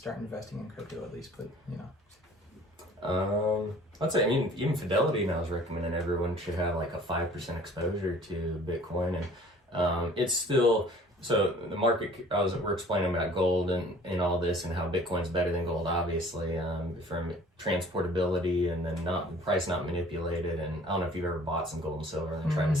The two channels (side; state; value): both; normal; correlation 0.51